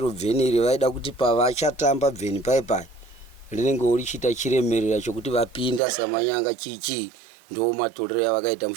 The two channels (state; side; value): drops out; left; at 5.8 s